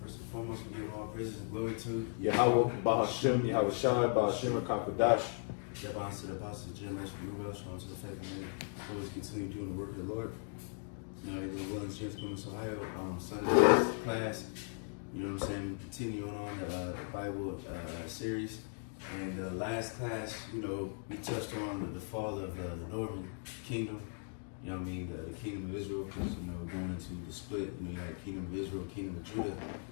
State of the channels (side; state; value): right; silent; 53 dB below the other